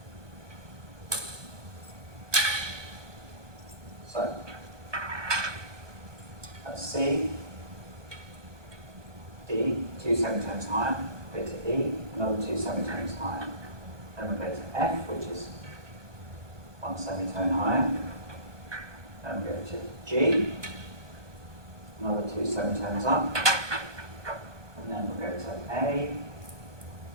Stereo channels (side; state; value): left; late; 1.2 ms